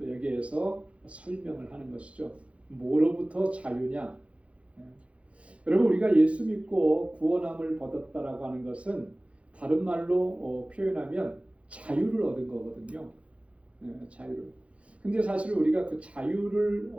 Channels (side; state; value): left; late; 0.062 ms